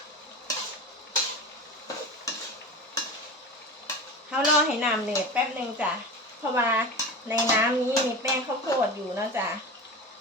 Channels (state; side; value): normal; both; correlation 0.30